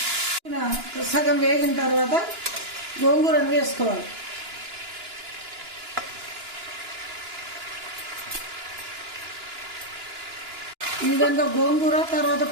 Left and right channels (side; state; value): left; late; 2.9 ms